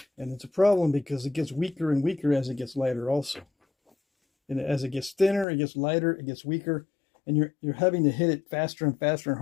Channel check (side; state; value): right; drops out; at 5.5 s